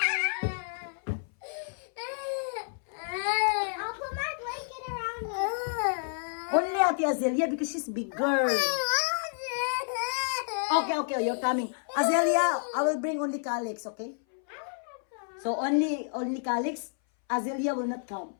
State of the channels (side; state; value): right; silent; 58 dB below the other